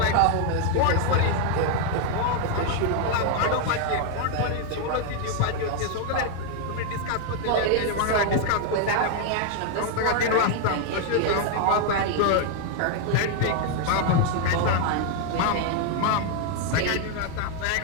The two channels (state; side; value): different; both; correlation 0.00